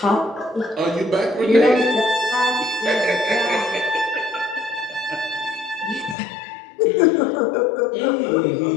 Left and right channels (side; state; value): right; drops out; at 6.2 s